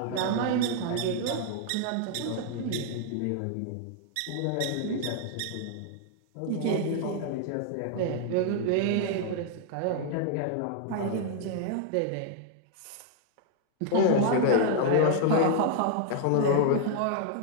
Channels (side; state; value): both; different; correlation 0.00